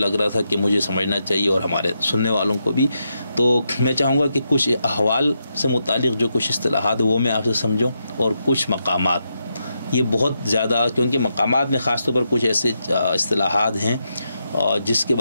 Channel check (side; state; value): both; inverted; correlation -0.84